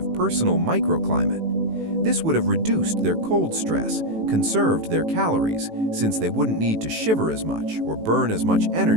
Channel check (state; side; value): late; left; 18 ms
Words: personal microclimate. This would have reduced their cold stress, conserved their calories, since they wouldn't need to shiver as much or burn as much